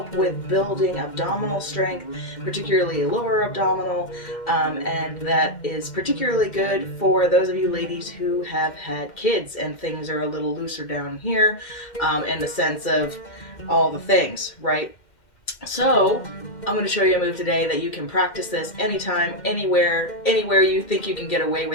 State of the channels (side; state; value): right; late; 2.1 ms